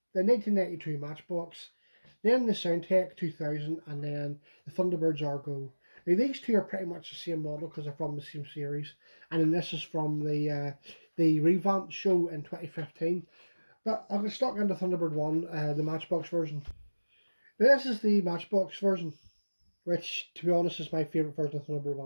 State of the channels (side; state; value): both; inverted; correlation -1.00